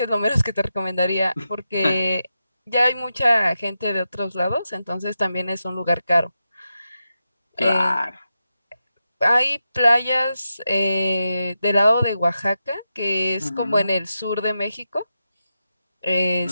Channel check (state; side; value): inverted; both; correlation -0.88